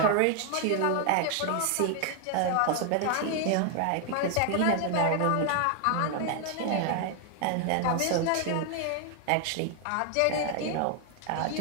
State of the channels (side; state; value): both; different; correlation 0.00